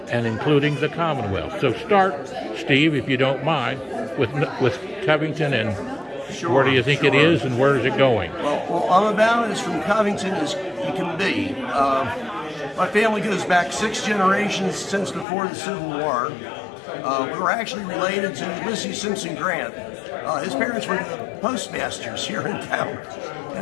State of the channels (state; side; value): drops out; right; at 15.2 s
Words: and including the Commonwealth. So start, Steve, if you don't mind, with Covington, and where do you think it is and where is it going? Well, I'm about as from Covington as you can be. My family goes back 6 generations since before the Civil War. We were actually related to Ulysses Simpson Grant. His parents were the postmasters here in town,